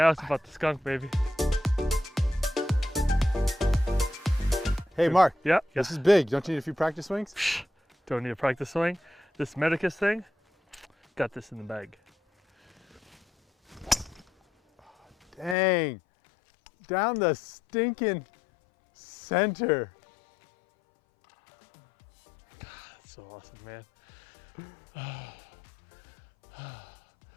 it's about the skunk, baby. Hey, Mark. Yeah. This is big. Don't you need a few practice swings? Don't need to practice swing. This Medicus thing, got this in the bag. Dang. Down the stinking center. That's so awesome, man.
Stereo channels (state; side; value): drops out; right; at 15.6 s